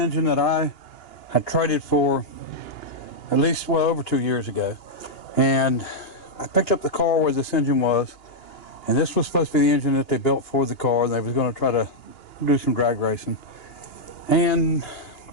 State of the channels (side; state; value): right; late; 2.9 ms